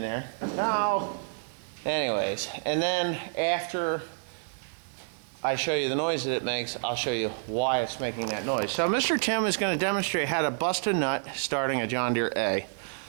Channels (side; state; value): left; silent; digital silence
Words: Now, anyways, and then after I show you the noise that it makes, I'll show you why it's making that noise. So Mr. Tim is going to demonstrate how to bust a nut starting a John Deere A.